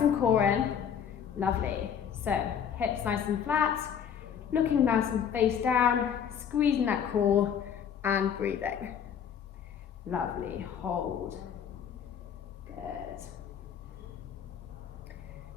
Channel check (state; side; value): quieter; right; 8.1 dB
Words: core in. Lovely. So, hips nice and flat, looking nice and face down, squeezing that core and breathing. Lovely. Hold. Good.